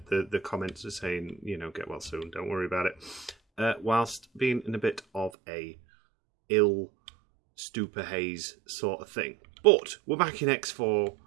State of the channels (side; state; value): left; drops out; at 5.3 s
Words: comments saying, get well soon, don't worry about it, whilst being in a bit of a ill stupor haze sort of thing. But we're back in X4,